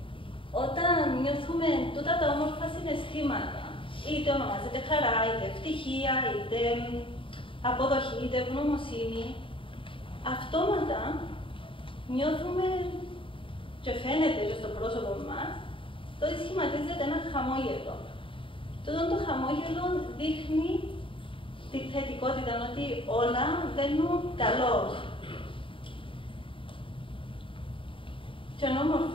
Όταν νιώθουμε τούτα τα όμορφα συναισθήματα, είτε ονομάζεται χαρά, είτε ευτυχία, είτε αποδοχή, είτε ευγνωμοσύνη, αυτόματα νιώθουμε και φαίνεται και στο πρόσωπο μας το ότι σχηματίζεται ένα χαμόγελο. Τούτο το χαμόγελο δείχνει τη θετικότητα, ότι όλα βαίνουν καλώς. Και είναι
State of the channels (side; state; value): right; late; 0.25 ms